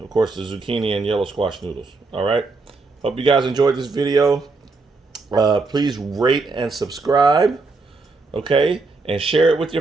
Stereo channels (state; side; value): quieter; left; 3.8 dB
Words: course the zucchini and yellow squash noodles. All right. Hope you guys enjoyed this video. Please rate and subscribe, okay, and share it with